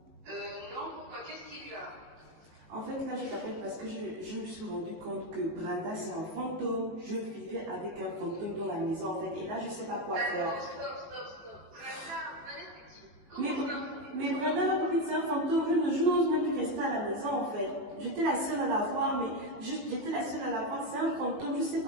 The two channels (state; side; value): late; left; 19 ms